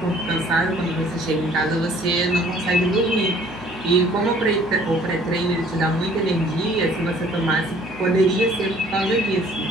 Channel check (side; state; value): left; noise; hum, 21 dB below the sound